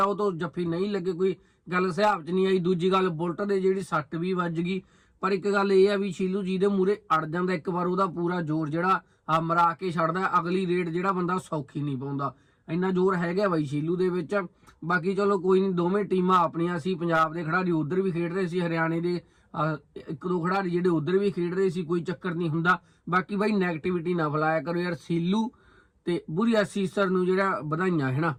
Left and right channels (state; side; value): identical; both; correlation 1.00